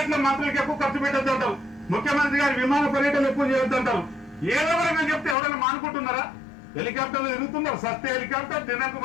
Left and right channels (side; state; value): right; drops out; at 5.4 s